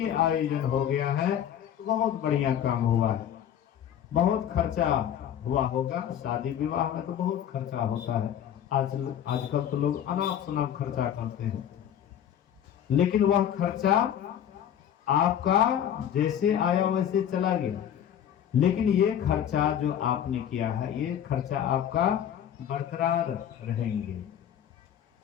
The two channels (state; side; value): quieter; right; 9.8 dB